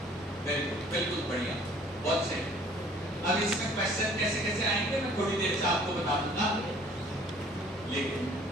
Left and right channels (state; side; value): normal; both; correlation 0.54